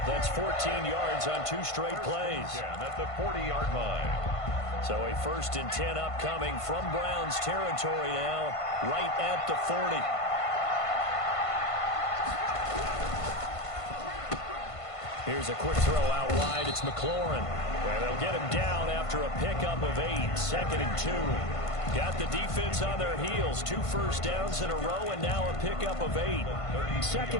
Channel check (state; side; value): late; right; 1.5 ms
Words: That's 14 yards on 2 straight plays. Yeah, at the 40-yard line. So a 1st and 10 upcoming from Browns territory now, right at the 40. Here's a quick throw out wide. It's McLaurin. And they'll get him down after a pickup of 8. 2nd and 2. Got the defense on their heels. 2 first downs in a row, and now a pickup of 8.